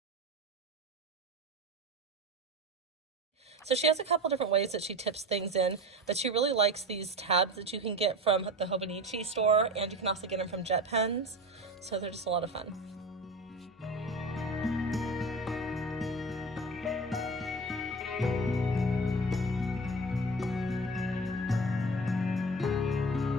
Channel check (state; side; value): normal; both; correlation 0.31